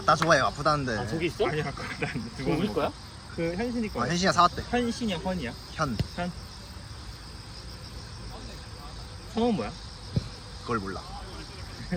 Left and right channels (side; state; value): both; identical; correlation 1.00